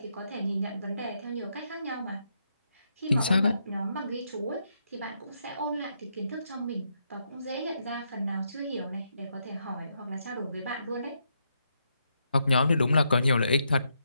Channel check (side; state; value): both; inverted; correlation -0.79